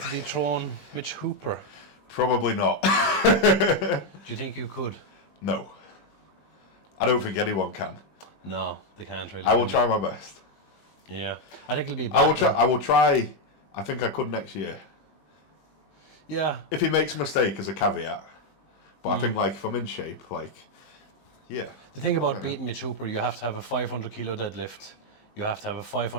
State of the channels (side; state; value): right; late; 20 ms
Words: dethrone Mitch Hooper. Probably not. Do you think you could? No. I don't think anyone can. No, they can't really. I will try my best. Yeah. I think it'll be bad. I will try. I think I could next year. Yeah. If he makes a mistake as a caveat. But I think like if I'm in shape, like, yeah. The thing about beating Mitch Hooper, you have to have a 500 kilo deadlift. You have to have a